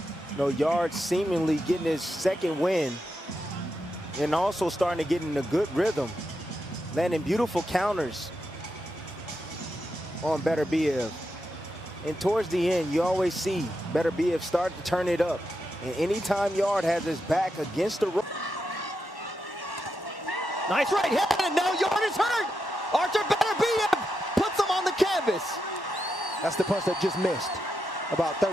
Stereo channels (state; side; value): normal; both; correlation 0.86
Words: You know, Yarde seemingly getting his second win and also starting to get in a good rhythm, landing beautiful counters on Beterbiev. And towards the end, you always see Beterbiev start to turn it up. And anytime Yarde has his back against the rope. Nice right hand, and now Yarde is hurt. Artur Beterbiev puts him on the canvas. That's the punch that just missed about